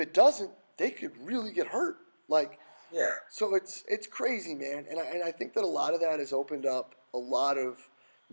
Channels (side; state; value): both; inverted; correlation -1.00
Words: doesn't, they could really get hurt. Yeah. So it's crazy, man, and I think that a lot of that has opened up a lot of